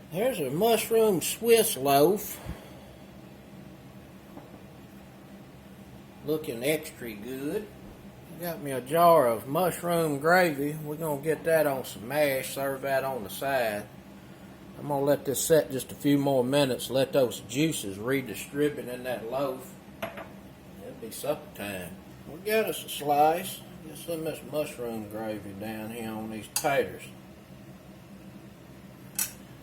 Here's a mushroom Swiss loaf. Looking extra good. Got me a jar of mushroom gravy. We're going to get that on some mash, serve that on the side. I'm going to let this set just a few more minutes, let those juices redistribute in that loaf. It'll be supper time. We got us a slice. Get some of this mushroom gravy down here on these taters.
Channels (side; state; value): both; identical; correlation 1.00